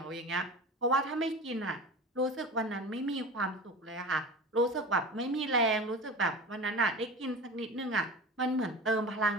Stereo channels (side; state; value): both; normal; correlation 0.33